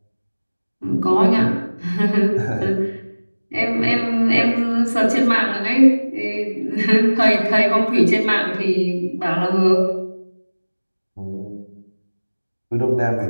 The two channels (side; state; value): both; inverted; correlation -1.00